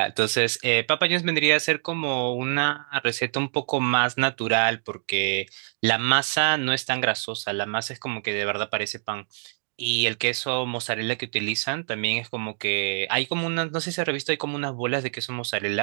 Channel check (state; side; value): silent; left; 61 dB below the other